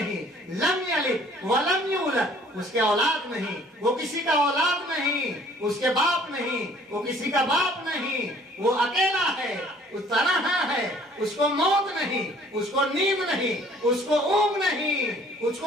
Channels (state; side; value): normal; both; correlation 0.56